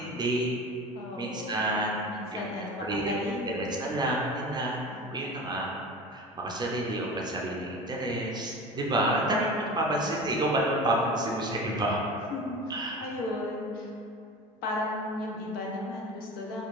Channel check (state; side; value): normal; both; correlation 0.34